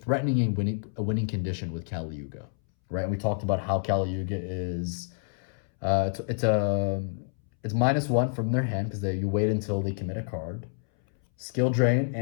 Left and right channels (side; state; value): right; silent; 59 dB below the other